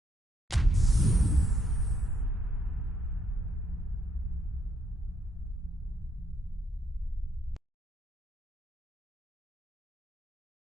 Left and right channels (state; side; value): normal; both; correlation 0.73